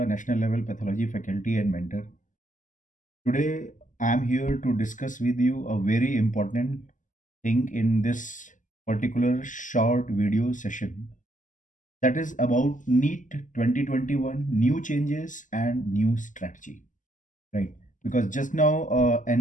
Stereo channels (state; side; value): late; right; 0.37 ms